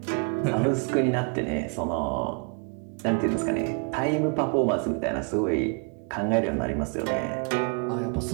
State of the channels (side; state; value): left; quieter; 37.2 dB